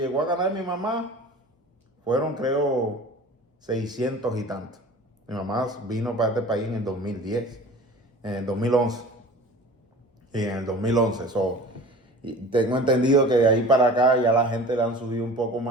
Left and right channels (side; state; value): both; normal; correlation 0.41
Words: a ganar mi mamá fueron, creo, 600 y tanto. Mi mamá vino para este país en el 2010, en el 2011. Y en el 2011, y tengo entendido que de ahí para acá ya la gente le han subido un poco